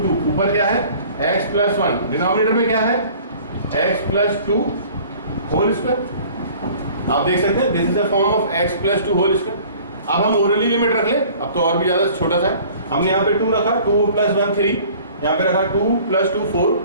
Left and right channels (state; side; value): inverted; both; correlation -0.49